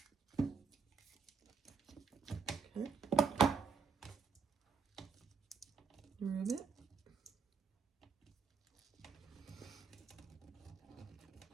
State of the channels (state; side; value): quieter; left; 5.8 dB